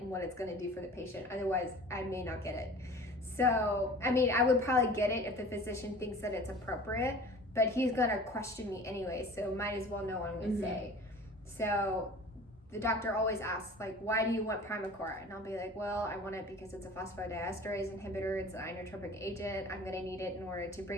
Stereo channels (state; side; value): normal; both; correlation 0.43